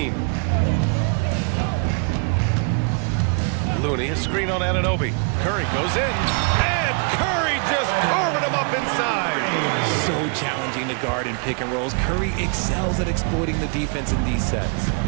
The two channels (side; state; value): left; quieter; 39.6 dB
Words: Looney, a screen on Anunoby. Curry goes in, and Curry just carving him up inside. So challenging to guard in pick and rolls. Curry excels at exploiting the defense in these sets.